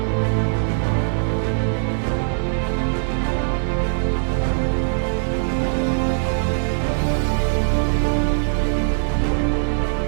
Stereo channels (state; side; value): silent; left; digital silence